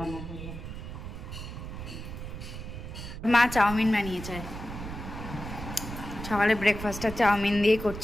করব। মা চাউমিন বানিয়েছে, সকালে ব্রেকফাস্টটা চাউমিন দিয়ে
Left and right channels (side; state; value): right; noise; rumble, 9 dB below the sound